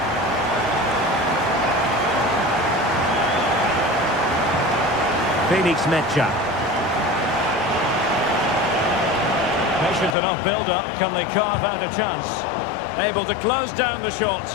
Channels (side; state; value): right; drops out; at 10.2 s